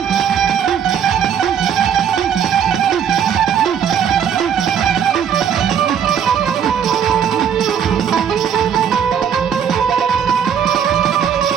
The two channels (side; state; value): left; quieter; 8.1 dB